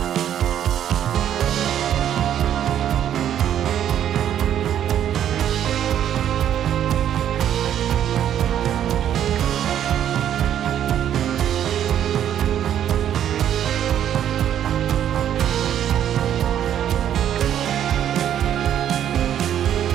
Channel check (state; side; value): quieter; left; 10.3 dB